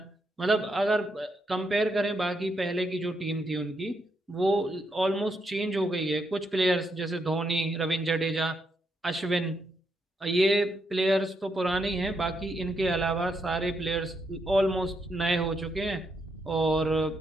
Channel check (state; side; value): normal; both; correlation 0.79